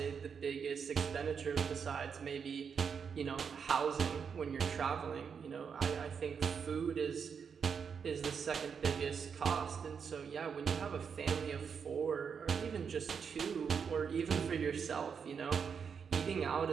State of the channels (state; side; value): quieter; left; 6.5 dB